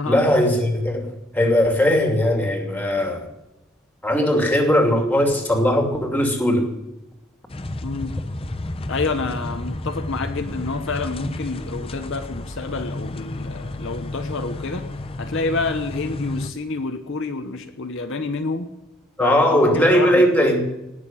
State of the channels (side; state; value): both; normal; correlation 0.64